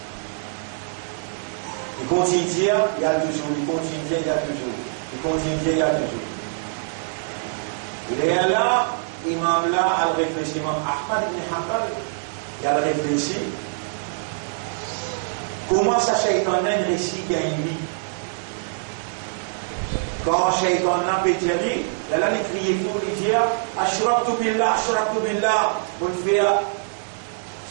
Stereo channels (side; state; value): left; silent; digital silence